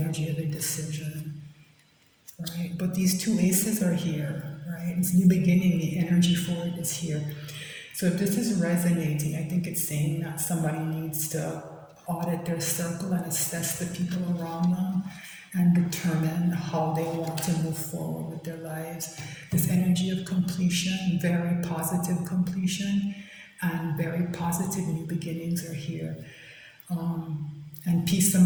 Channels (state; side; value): identical; both; correlation 1.00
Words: of indecision, right? But these two aces are here, right? It's new beginning. The energy for it is here. So if this is resonating, I think it's saying that somebody needs to audit their circle and assess the people around them and determine how they want to move forward with their lives. This energy of completion, very positive completion, and very positive new beginnings are here. And peace,